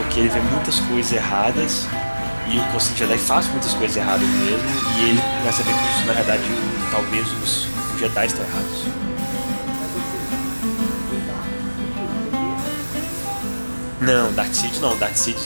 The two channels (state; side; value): inverted; both; correlation -1.00